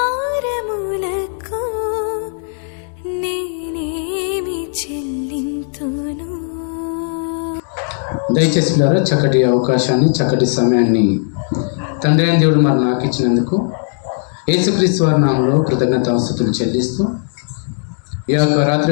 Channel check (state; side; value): silent; right; digital silence